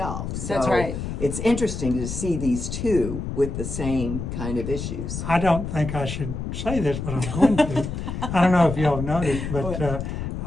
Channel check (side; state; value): left; noise; rumble, 5 dB below the sound